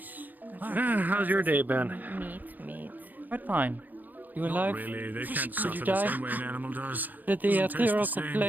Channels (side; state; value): left; late; 0.084 ms